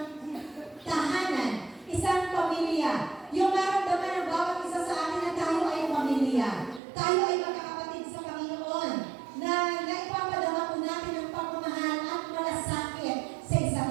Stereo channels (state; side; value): drops out; left; at 6.8 s